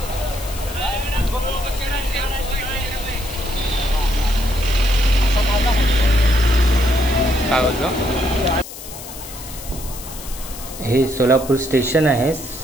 काय बोलतो? हे सोलापूर स्टेशन आहे।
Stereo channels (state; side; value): noise; left; hiss, 13 dB below the sound